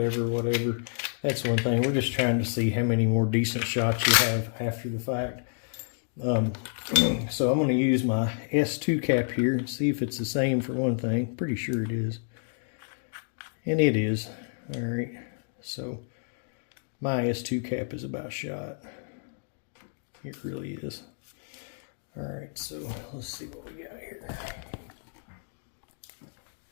that's one thing. We're just trying to see how many more decent shots you have after the fact. So I'm going to use my S2 cap here and see if it's the same for one thing. Pretty sure it is. And it is. All right. So my S2 cap is about shot. It really is. All right. So let's see what we got here.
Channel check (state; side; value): silent; right; digital silence